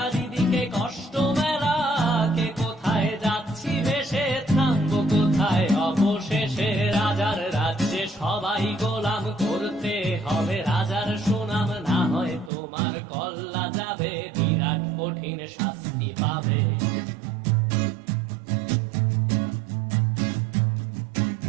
কষ্ট মেলা, কে কোথায় যাচ্ছি ভেসে, থামবো কোথায় অবশেষে। রাজার রাজ্যে সবাই গোলাম, করতে হবে রাজার সুনাম, না হয় তোমার কল্লা যাবে, বিরাট কঠিন শাস্তি পাবে।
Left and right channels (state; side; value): drops out; left; at 12.5 s